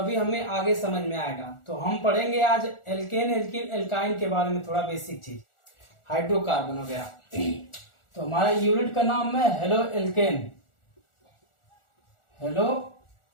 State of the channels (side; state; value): right; late; 1.4 ms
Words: हमें आगे समझ में आएगा। तो हम पढ़ेंगे आज एल्केन, एल्किन, एल्काइन के बारे में थोड़ा बेसिक चीज, हाइड्रोकार्बन वगैरह। तो हमारा यूनिट का नाम है हेलो एल्केन, हेलो